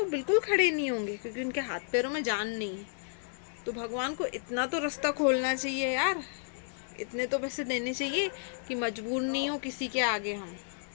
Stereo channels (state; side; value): silent; right; digital silence